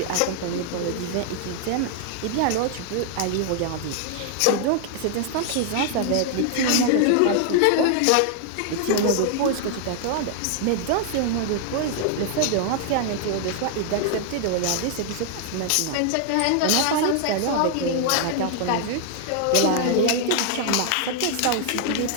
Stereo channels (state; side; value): different; both; correlation 0.00